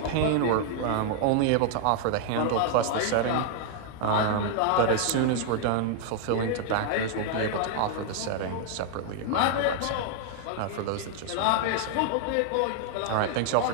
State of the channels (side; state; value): both; different; correlation 0.00